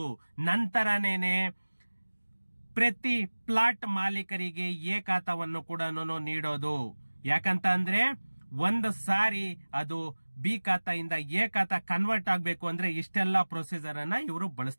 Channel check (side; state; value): both; inverted; correlation -1.00